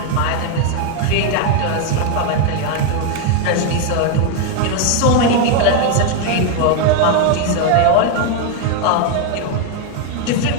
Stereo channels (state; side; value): different; both; correlation 0.01